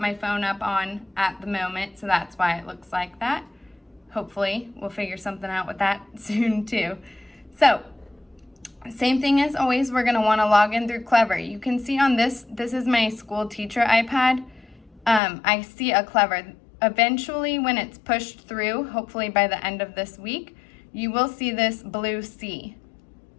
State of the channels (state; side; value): drops out; right; at 15.2 s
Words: phone up on at the moment, so that's why it looks like that. Hopefully we'll figure something out with that soon too. So same thing as always, we're going to want to log in through Clever. You can see on this is my school teacher iPad. I see a Clever. Eventually when it's pushed through, hopefully by the end of this week, you will see this blue C.